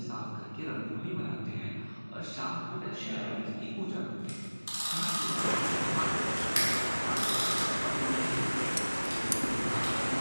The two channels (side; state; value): both; inverted; correlation -1.00